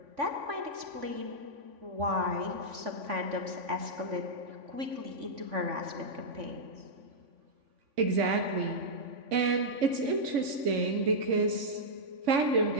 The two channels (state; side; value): late; left; 3.5 ms